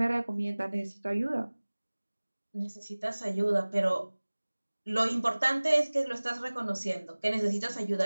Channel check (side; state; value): both; inverted; correlation -1.00